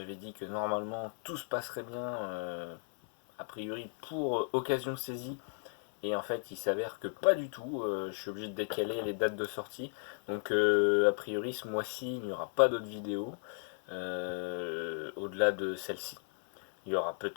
dit que normalement tout se passerait bien, a priori pour Occasion Saisie. Et en fait il s'avère que pas du tout, je suis obligé de décaler les dates de sortie. Donc a priori ce mois-ci il n'y aura pas d'autres vidéos, au-delà de celle-ci. Il y aura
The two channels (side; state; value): right; silent; 54 dB below the other